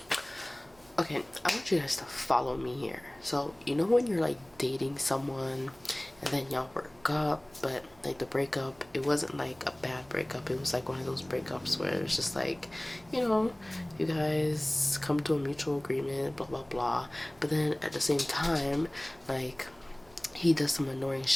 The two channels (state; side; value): noise; right; hum, 27 dB below the sound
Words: Okay, I want you guys to follow me here. So, you know when you're like dating someone and then y'all broke up, but like the breakup, it wasn't like a bad breakup. It was like one of those breakups where it's just like, you know, you guys come to a mutual agreement, blah, blah, blah. But then at the same time, like, he does some annoying